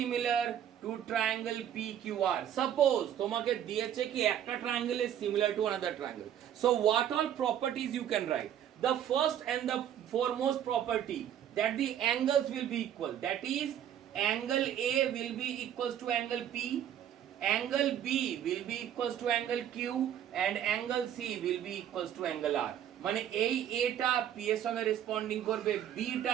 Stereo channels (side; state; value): left; quieter; 10.2 dB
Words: to triangle PQR, suppose তোমাকে দিয়েছে কি একটা triangle is similar to another triangle, so what all properties you can write? The first and the foremost property, that the angles will be equal, that is angle A will be equals to angle P, angle B will be equals to angle Q and angle C will be equals to angle R. মানে এই A টা P এর সঙ্গে responding করবে, B